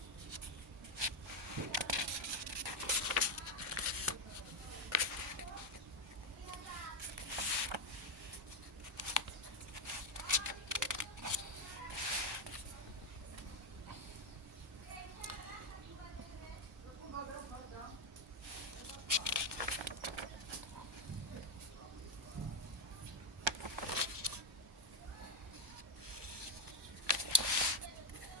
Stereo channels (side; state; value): both; normal; correlation 0.06